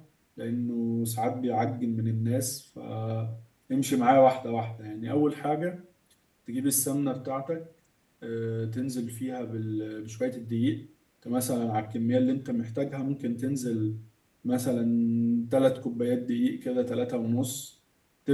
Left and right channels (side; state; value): both; identical; correlation 1.00